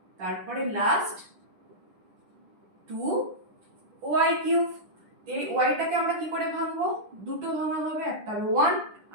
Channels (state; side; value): late; left; 10 ms